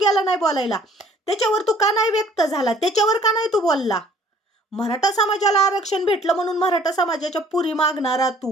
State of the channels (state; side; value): normal; both; correlation 0.56